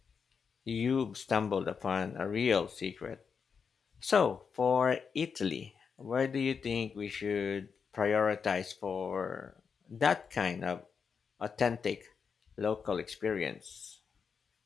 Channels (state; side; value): quieter; right; 6.1 dB